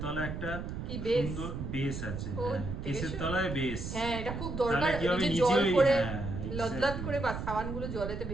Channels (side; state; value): right; noise; rumble, 6 dB below the sound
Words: তলায় একটা সুন্দর বেস আছে। কেসের তলায় বেস। হ্যাঁ, এটা খুব দরকার। এই যে জল করে লদলদ করে বা সাবানগুলো জলেতে